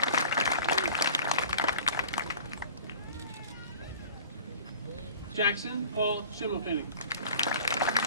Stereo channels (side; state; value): both; inverted; correlation -0.43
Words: Jackson Paul Schimmelpenning.